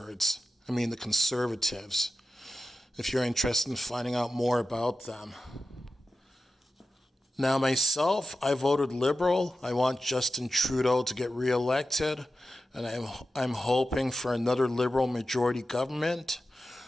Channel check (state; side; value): normal; both; correlation 0.93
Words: if you're interested in finding out more about them. Now, myself, I voted Liberal. I want Justin Trudeau to get reelected, and I'm hoping for another Liberal majority government,